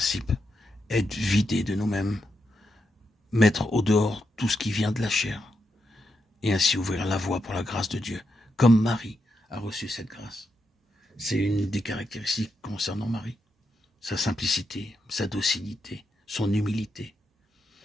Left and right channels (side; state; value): both; normal; correlation 0.84